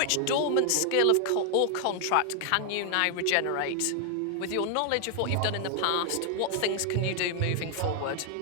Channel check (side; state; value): both; different; correlation 0.00